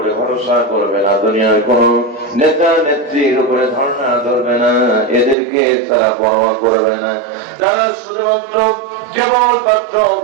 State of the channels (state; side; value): drops out; left; at 5.4 s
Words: ভরসা করবে না, দুনিয়ার কোন নেতা নেত্রীর উপরে ধারণা ধরবে না, এদেরকে তারা পরোয়া করবে না, তারা শুধুমাত্র কেবলমাত্র